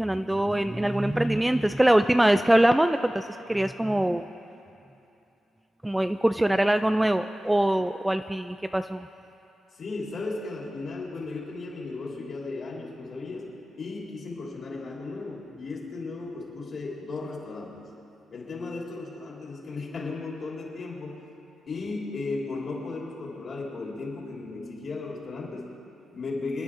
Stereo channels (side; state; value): both; normal; correlation 0.96